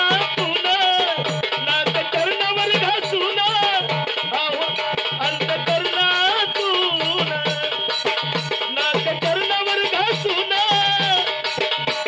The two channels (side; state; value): both; identical; correlation 1.00